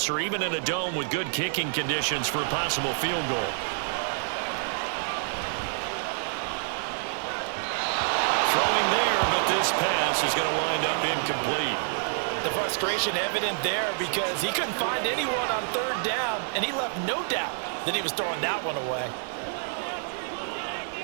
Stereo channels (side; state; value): left; silent; 58 dB below the other